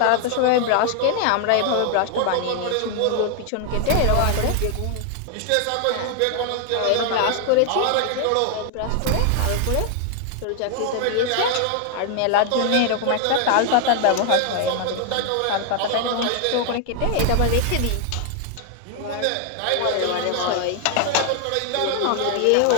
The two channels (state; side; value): different; both; correlation 0.00